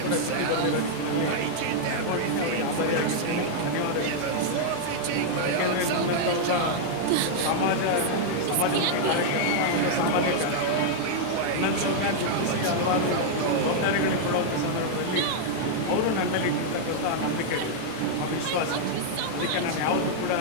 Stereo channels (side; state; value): both; different; correlation -0.01